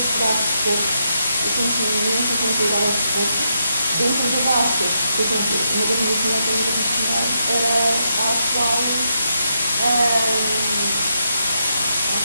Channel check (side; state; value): both; inverted; correlation -0.81